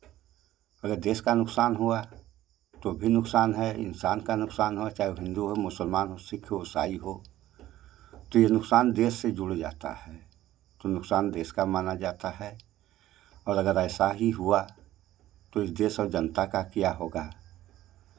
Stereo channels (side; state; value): left; quieter; 14.3 dB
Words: अगर देश का नुकसान हुआ तो भी नुकसान है, इंसान का नुकसान हो, चाहे वो हिंदू हो, मुसलमान हो, सिख हो, ईसाई हो, तो ये नुकसान देश से जुड़ जाता है, तो नुकसान देश का माना जाता है। और अगर ऐसा ही हुआ तो इस देश और जनता का क्या होगा।